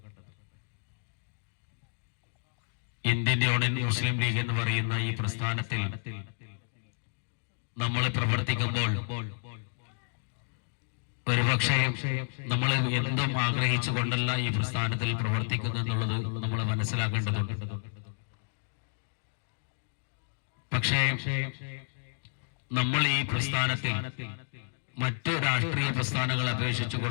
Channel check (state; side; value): silent; right; digital silence